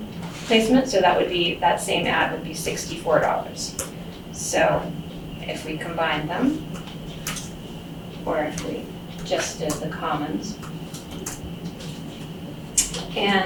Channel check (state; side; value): identical; both; correlation 1.00